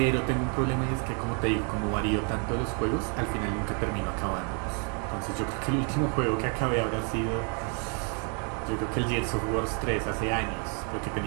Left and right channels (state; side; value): quieter; left; 39.3 dB